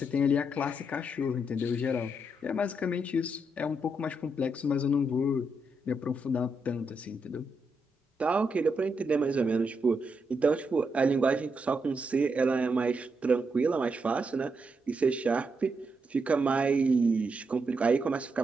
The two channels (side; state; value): both; normal; correlation 0.81